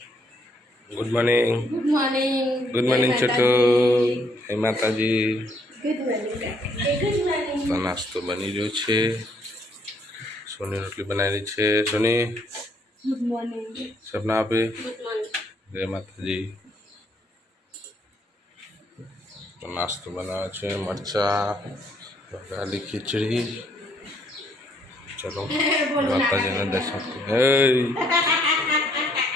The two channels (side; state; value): both; normal; correlation 0.69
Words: good morning. Good morning Chhotu. હે માતાજી. તો નાસ્તો બની રહ્યો છે. સોની રોટલી બનાવેલી છે. સોની ગુડ મોર્નિંગ. સપના આપે. Good morning. જય માતાજી. તો નાસ્તો બનાવે છે. મરચા, વઘારેલી ખીચડી. ચલો માતાજીના દર્શન